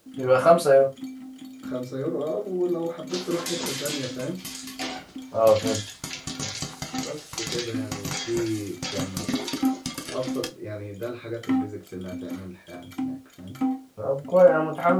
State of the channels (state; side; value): identical; both; correlation 1.00